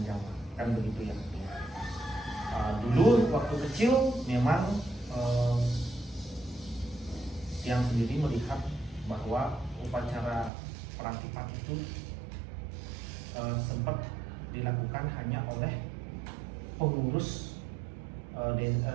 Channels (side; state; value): left; drops out; at 10.5 s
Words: zaman, kan begitu ya. Dulu waktu kecil memang yang sendiri melihat bahwa upacara perang lipat itu sempat dilakukan hanya oleh pengurus